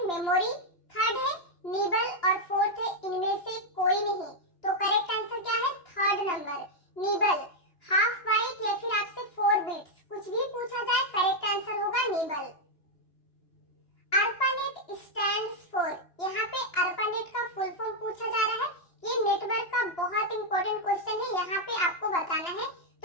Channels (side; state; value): right; late; 2.9 ms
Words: मेमोरी, थर्ड है निबल और फोर्थ है इनमें से कोई नहीं। तो करेक्ट आंसर क्या है? Third number nibble. Half byte या फिर आपसे 4 बिट्स कुछ भी पूछा जाए करेक्ट आंसर होगा निबल। ARPANET स्टैंड्स फॉर, यहाँ पे ARPANET का फुल फॉर्म पूछा जा रहा है। ये नेटवर्क का बहुत इंपॉर्टेंट क्वेश्चन है, यहाँ पे आपको बताना है।